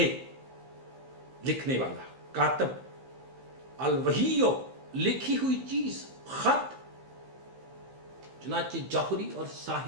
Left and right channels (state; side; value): late; left; 15 ms